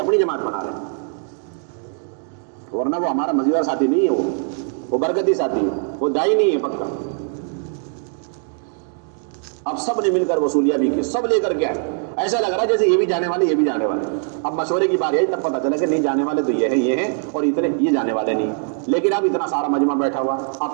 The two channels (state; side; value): silent; left; 56 dB below the other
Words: جماعت بنا رہے ہیں. ورنہ وہ ہمارا مزیدار ساتھی نہیں ہے، وہ برکتی ساتھی ہے، وہ دائی نہیں ہے پکا. اب سب نے مل کر وصولیاں بھی کی، سب لے کر کے آئے. ایسا لگ رہا ہے جیسے یہ بھی جانے والے یہ بھی جانے والے. اب مشورے کی باری آئی تب پتہ چلا کہ نہیں جانے والے تو یہ ہیں اور اتنے یہ جانے والے نہیں. لیکن اب اتنا سارا مجمع بیٹھا ہوا،